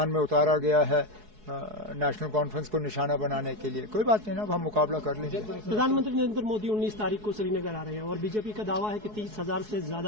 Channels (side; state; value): left; late; 4.7 ms